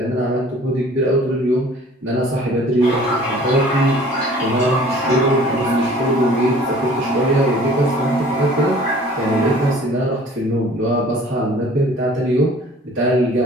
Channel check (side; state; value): both; normal; correlation 0.50